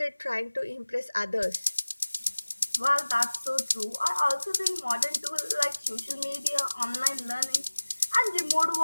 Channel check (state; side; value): inverted; both; correlation -1.00